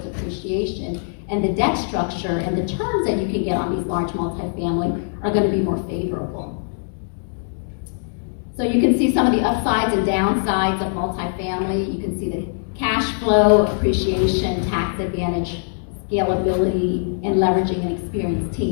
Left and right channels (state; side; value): silent; right; digital silence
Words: appreciation, and the debt structure and the terms that you can get on these large multifamily are going to be more favorable. So you can see some of the upsides and downsides of multifamily. You can see the cash flow, appreciation, tax advantage, scalability, and leveraging an experienced